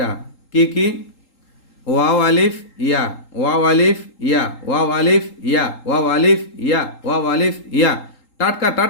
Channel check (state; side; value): late; right; 3.8 ms